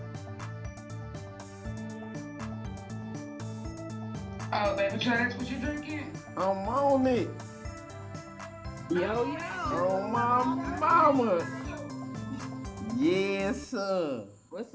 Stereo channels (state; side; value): identical; both; correlation 1.00